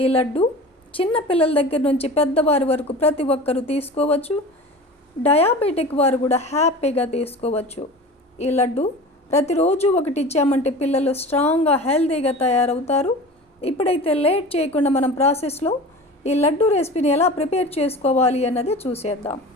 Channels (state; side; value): normal; both; correlation 0.36